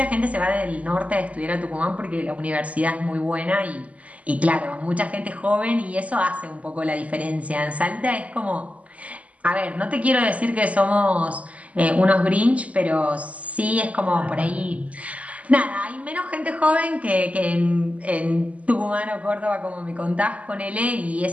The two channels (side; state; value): left; late; 0.069 ms